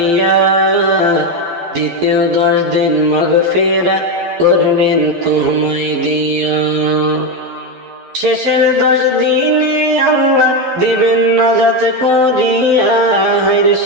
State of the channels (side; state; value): left; late; 11 ms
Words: দ্বিতীয় 10 দিন মাগফিরাত করবেন তোমায় দিয়া। শেষের 10 দিনে আল্লাহ দিবেন নাজাত করিয়া,